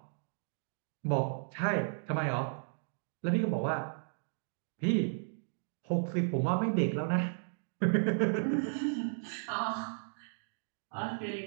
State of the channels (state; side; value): silent; left; digital silence